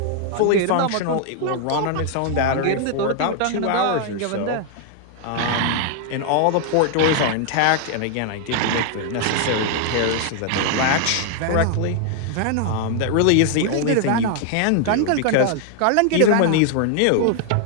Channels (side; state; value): both; different; correlation 0.00